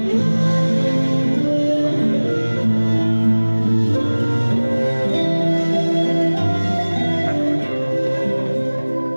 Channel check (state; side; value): inverted; both; correlation -1.00